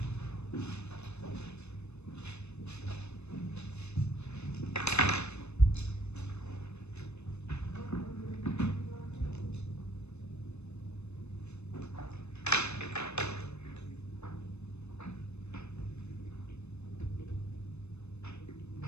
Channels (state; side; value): late; right; 0.81 ms